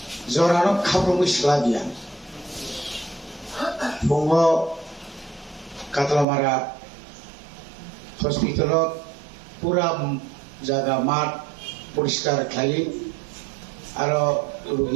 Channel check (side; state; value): left; drops out; at 6.2 s